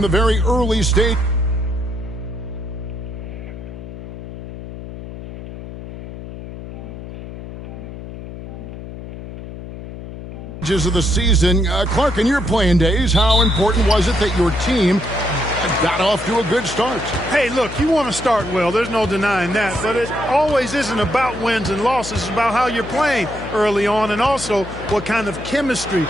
the very early stages of the season. Clark, in your playing days, how important was it that your team got off to a good start? Hey, look, you want to start well. There's no denying that. But it always isn't about wins and losses. It's about how you're playing early on, and also what kind of chemistry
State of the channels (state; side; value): noise; left; hum, 11 dB below the sound